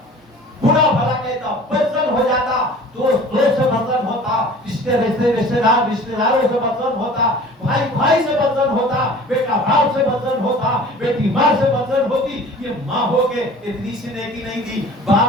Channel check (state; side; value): normal; both; correlation 0.44